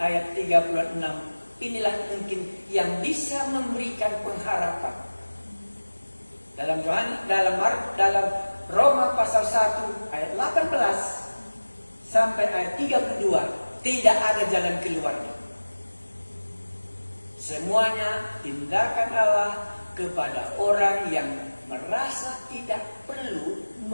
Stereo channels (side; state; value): both; inverted; correlation -1.00